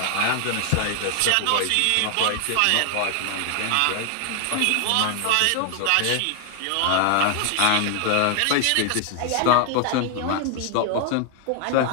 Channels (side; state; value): both; different; correlation 0.00